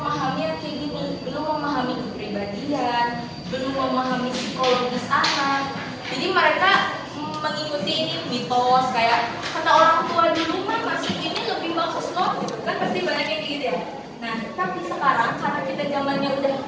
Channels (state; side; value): identical; both; correlation 1.00